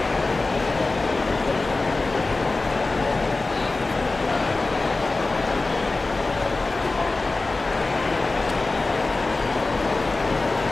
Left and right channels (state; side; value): quieter; right; 3.4 dB